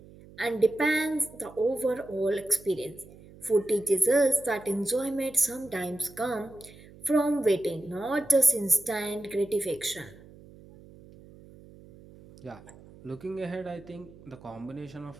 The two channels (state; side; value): noise; right; hum, 21 dB below the sound